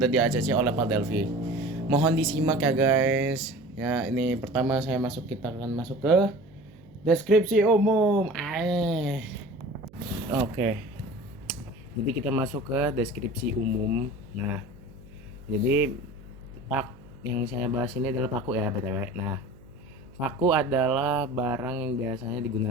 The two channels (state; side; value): noise; right; hum, 24 dB below the sound